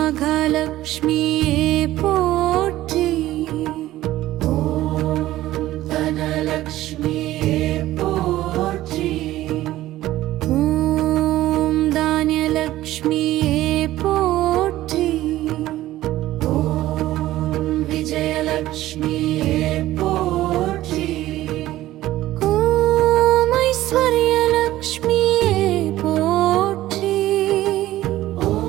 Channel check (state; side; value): quieter; left; 15.2 dB